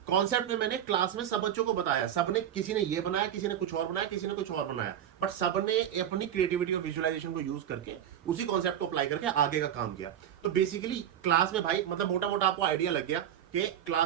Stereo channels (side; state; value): left; quieter; 10.2 dB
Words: कॉन्सेप्ट में मैंने क्लास में सब बच्चों को बताया, सबने, किसी ने ये बनाया, किसी ने कुछ और बनाया, किसी ने कुछ और बनाया, बट सबने अपनी क्रिएटिविटी और विजुअलाइजेशन को यूज करके उसी कॉन्सेप्ट को अप्लाई करके आगे का काम किया। तो बेसिकली क्लास में भाई मतलब मोटा मोटा आपको आइडिया लग गया कि